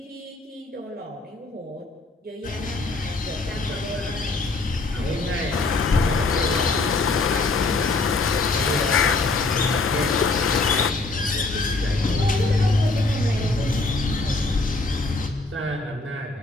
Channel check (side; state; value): right; quieter; 3.4 dB